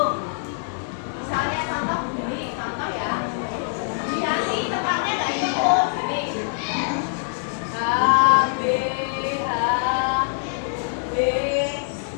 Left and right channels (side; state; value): right; silent; 62 dB below the other